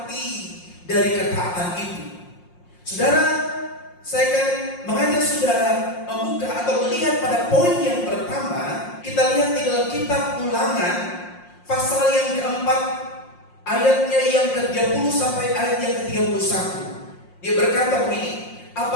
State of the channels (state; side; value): late; right; 5.6 ms